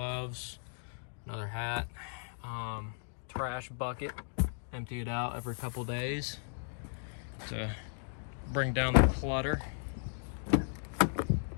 another hat, trash bucket, empty it out every couple days to bring down the clutter.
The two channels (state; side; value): silent; right; digital silence